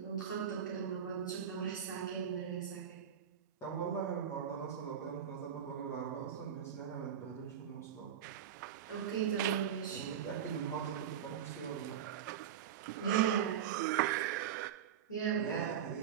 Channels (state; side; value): quieter; left; 8.8 dB